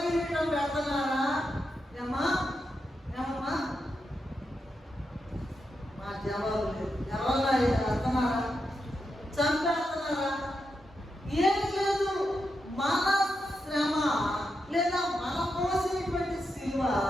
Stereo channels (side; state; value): both; normal; correlation 0.86